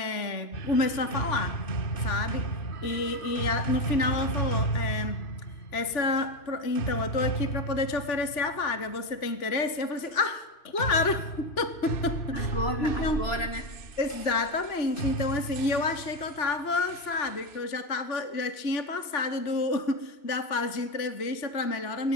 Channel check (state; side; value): late; right; 3.4 ms